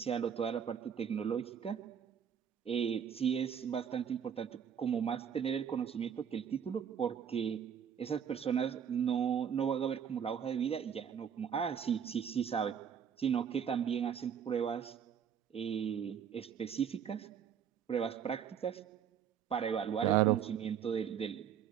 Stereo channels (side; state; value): left; quieter; 8.1 dB